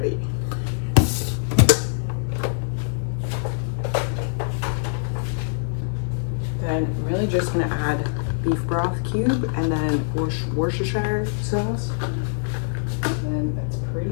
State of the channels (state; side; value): silent; right; digital silence